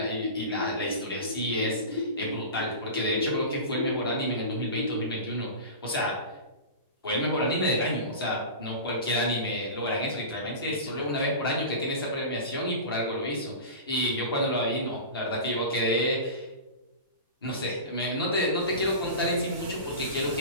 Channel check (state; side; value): inverted; both; correlation -0.30